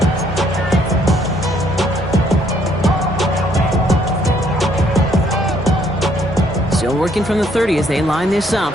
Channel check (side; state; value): both; normal; correlation 0.67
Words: Still working from the 30 as they line this up.